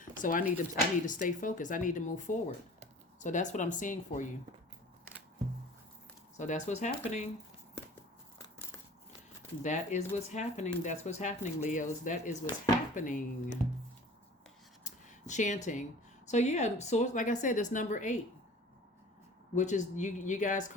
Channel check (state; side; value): normal; both; correlation 0.45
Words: So I need to stay focused. I need to move forward. So that's what I'm seeing for you. So that's what's happening. That is what's happening. That's what's happening, Leos. That is what's happening. Chanting. So yeah, so like I said, it's number 8. which is you guys